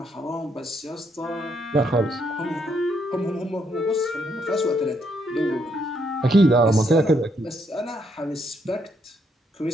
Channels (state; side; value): normal; both; correlation 0.74